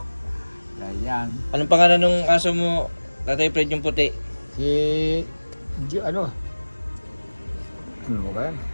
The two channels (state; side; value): inverted; both; correlation -1.00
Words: Ganyan. Anong pangalan ng aso mo, Tatay Fred, yung puti? Si... Ano ba yan?